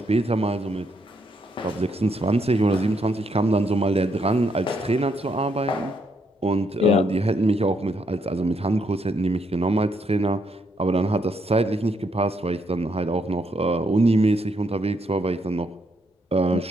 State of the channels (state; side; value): normal; both; correlation 0.75